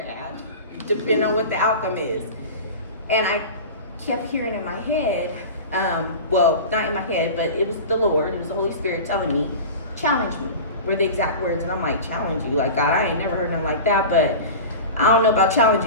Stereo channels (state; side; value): inverted; both; correlation -0.32